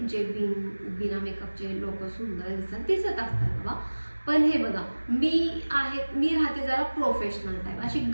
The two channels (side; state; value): both; inverted; correlation -1.00